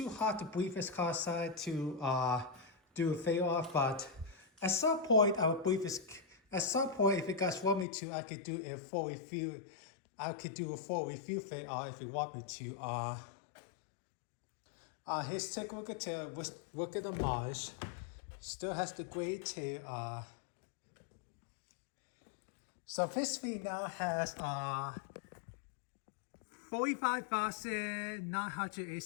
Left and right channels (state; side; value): drops out; right; at 7.9 s